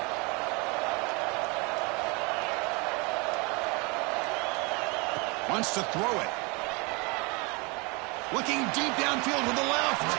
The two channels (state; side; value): quieter; left; 29.1 dB